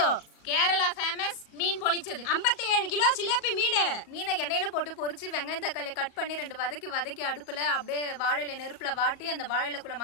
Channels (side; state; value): right; late; 37 ms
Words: கேரளா ஃபேமஸ் மீன் பொளிச்சது 57 கிலோ சிலேபி மீனை எண்ணெயில போட்டு பொரிச்சு வெங்காயம் தக்காளி கட் பண்ணி 2 வதக்கி அடுப்புல அப்படியே வாழையில நெருப்புல வாட்டி அந்த வாழையிலக்குள்ள